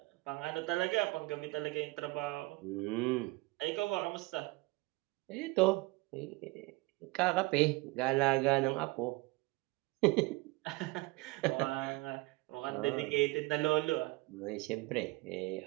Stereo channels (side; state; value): left; quieter; 22.7 dB